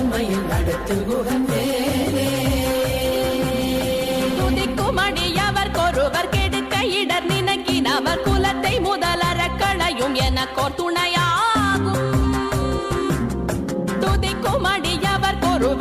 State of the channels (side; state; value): both; identical; correlation 1.00